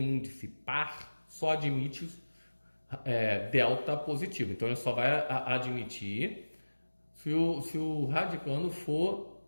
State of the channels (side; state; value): both; inverted; correlation -1.00